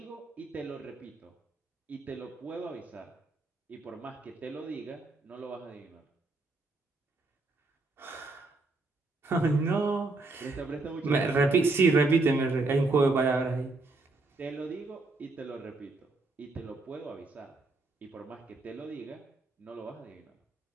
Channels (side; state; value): left; quieter; 3.4 dB